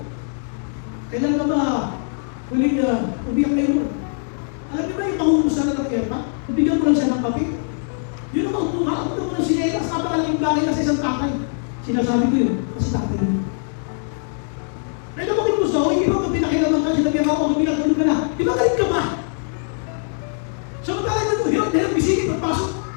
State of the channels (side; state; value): right; silent; digital silence